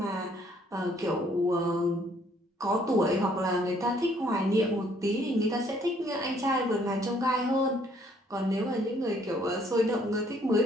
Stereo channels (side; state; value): both; normal; correlation 0.64